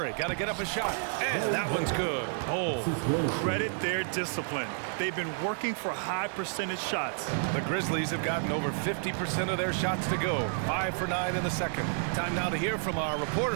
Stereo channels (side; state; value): left; silent; 58 dB below the other